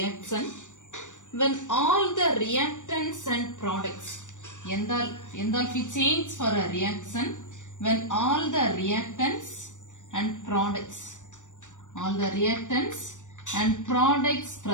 when all the reactants and products. Enthalpy change for a reaction when all the reactants and products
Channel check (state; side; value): late; right; 0.85 ms